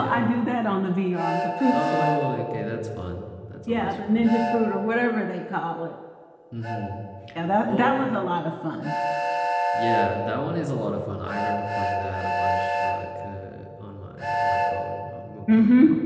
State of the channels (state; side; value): identical; both; correlation 1.00